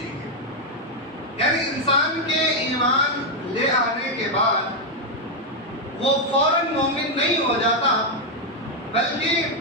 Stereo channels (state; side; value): normal; both; correlation 0.02